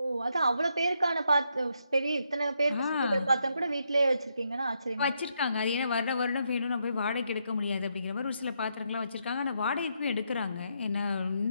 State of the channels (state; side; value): inverted; both; correlation -0.78